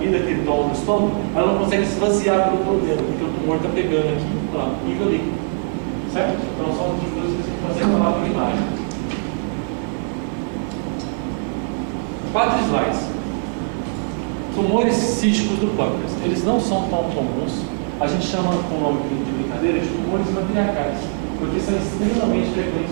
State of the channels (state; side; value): silent; left; 59 dB below the other